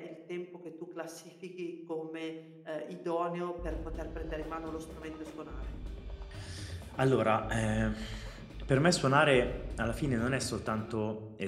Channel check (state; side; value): identical; both; correlation 1.00